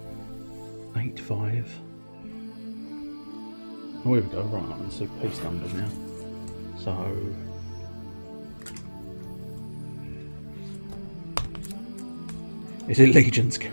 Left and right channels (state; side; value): inverted; both; correlation -1.00